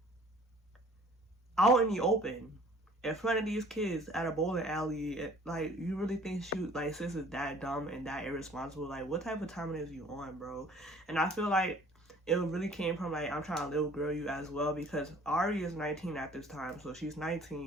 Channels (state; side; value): normal; both; correlation 0.52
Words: out in the open in front of these kids at a bowling alley. Like, you really think like, sis is that dumb and that irresponsible? Like, what type of time is you on, bro? And I feel like it really came from, like, I'm trying to little girl you as well, because Ari is 19 at this time, so she's